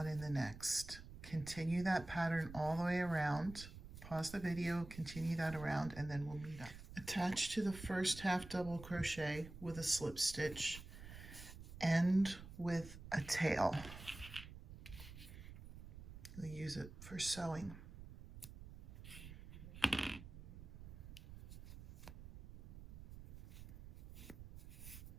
in the next. Continue that pattern all the way around. Pause the video, continue that around, and then we'll meet up. Attach to the first half double crochet with a slip stitch, end with a tail. We'll use it for sewing.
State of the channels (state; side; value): noise; right; rumble, 13 dB below the sound